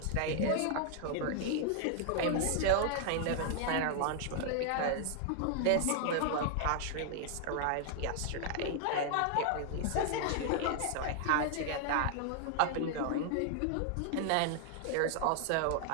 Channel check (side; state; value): both; different; correlation 0.00